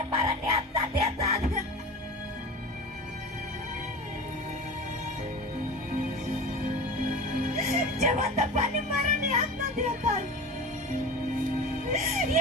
मरणे आत्ता देतात. जिवंतपणे मरणे आत्ता देतात.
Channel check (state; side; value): normal; both; correlation 0.32